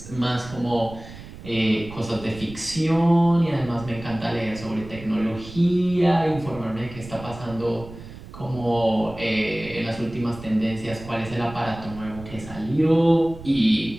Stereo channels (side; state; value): right; noise; rumble, 15 dB below the sound